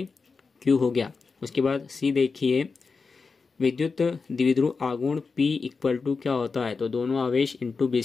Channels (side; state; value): right; quieter; 4.7 dB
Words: हो गया। उसके बाद C देखिए, विद्युत द्विध्रुव आघूर्ण P इक्वल टू क्या होता है, तो दोनों आवेश इंटू